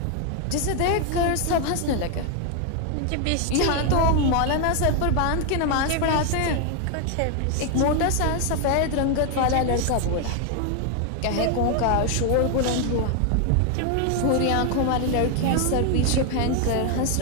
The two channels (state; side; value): different; both; correlation 0.01